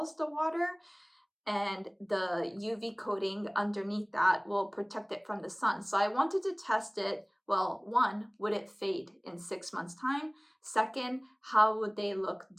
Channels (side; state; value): both; identical; correlation 1.00